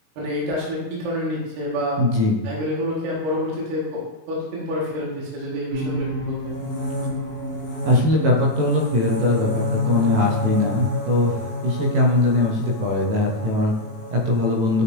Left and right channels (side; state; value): left; late; 18 ms